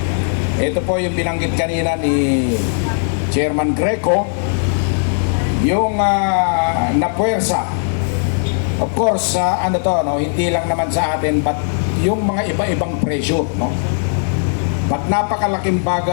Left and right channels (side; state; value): right; silent; digital silence